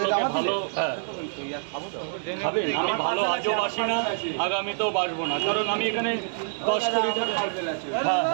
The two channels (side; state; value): left; silent; digital silence